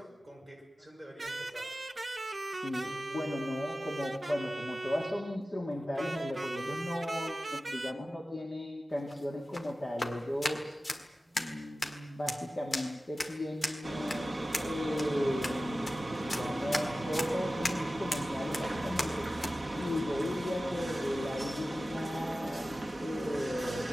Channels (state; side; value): normal; both; correlation 0.95